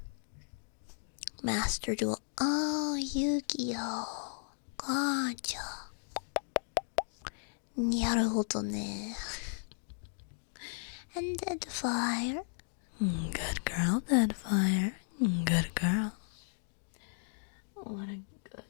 Master Duel. Oh, Yu-Gi-Oh! Gotcha. Naruhodo ne. And Deadfire. Good girl, Deadfire. Good girl. What a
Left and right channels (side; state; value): right; silent; digital silence